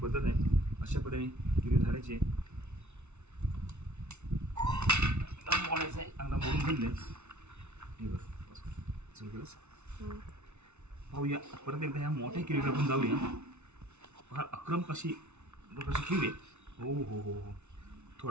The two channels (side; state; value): left; late; 0.82 ms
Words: पद्धत आहे. अशा पद्धतीने किरवी धरायची. मोडायचं आहे, चांगला मोडून घेतले. हे बरं सुरू केलंस. पाहूया परत एकदा ह्या मोठ्या किरवीला आपण जाऊया. फार अक्रम कशी किरवी. हो हो हो हो